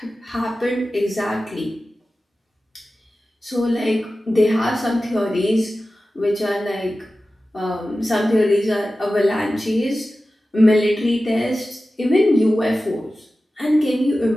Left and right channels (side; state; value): both; normal; correlation 0.95